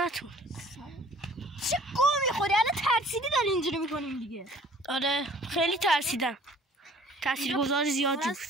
چه گو میخوری؟ الان ترسیدی داری اینجوری میکنیم دیگه. آره خیلی ترسیدم. تاثیرگذار زیادی بود.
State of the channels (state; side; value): normal; both; correlation 0.53